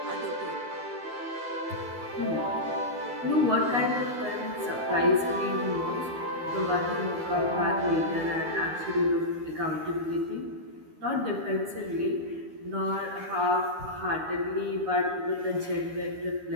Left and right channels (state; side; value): late; left; 12 ms